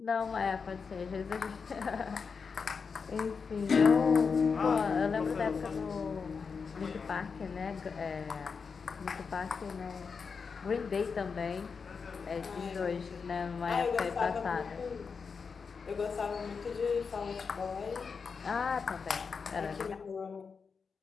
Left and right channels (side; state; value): right; quieter; 5.4 dB